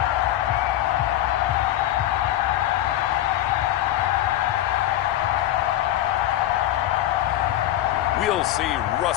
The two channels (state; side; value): quieter; right; 13.4 dB